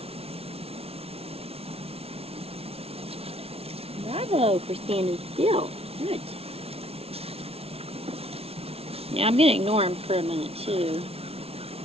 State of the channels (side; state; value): left; late; 0.29 ms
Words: Bravo for standing still. Good. Now I'm going to ignore him for a minute too.